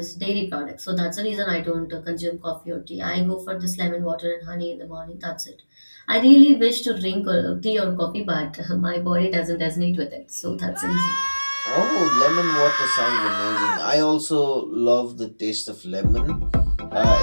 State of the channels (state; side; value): inverted; both; correlation -1.00